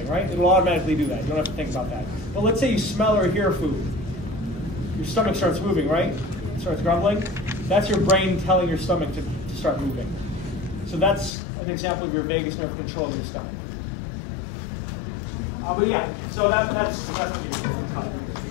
right? It'll automatically do that. You don't have to think about that. But let's say you smell or hear food. Your stomach starts moving, right? It starts grumbling. That's your brain telling your stomach to start moving. So that's an example of your vagus nerve controlling your stomach. But yeah, so that's what you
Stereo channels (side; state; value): right; drops out; at 11.4 s